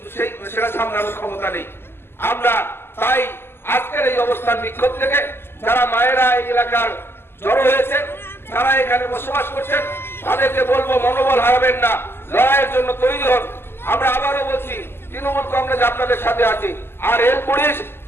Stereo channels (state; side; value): late; right; 0.11 ms